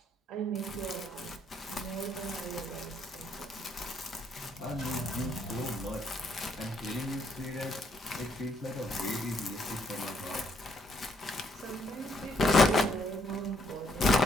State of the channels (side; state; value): both; normal; correlation 0.71